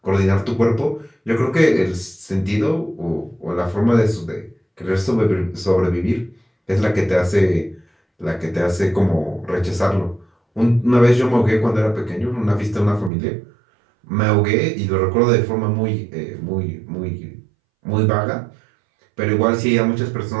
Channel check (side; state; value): left; drops out; at 13.1 s